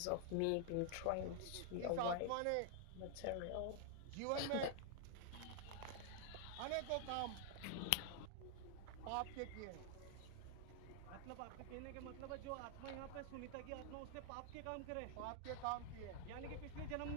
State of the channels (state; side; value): different; both; correlation 0.00